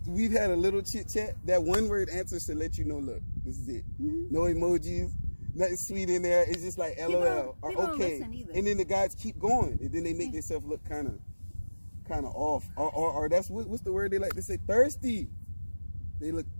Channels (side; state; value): both; inverted; correlation -1.00